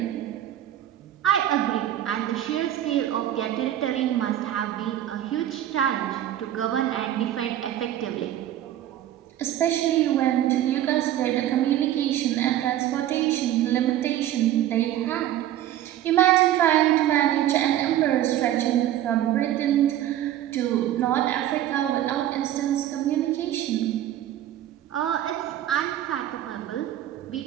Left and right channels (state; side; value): quieter; left; 12.3 dB